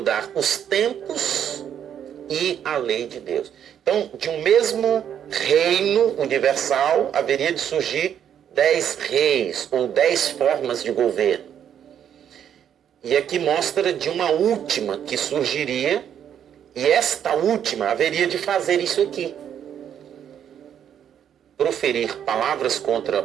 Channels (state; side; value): quieter; left; 9.2 dB